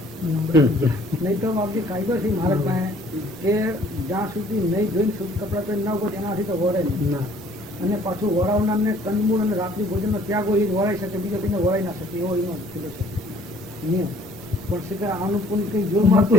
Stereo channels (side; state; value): both; normal; correlation 0.58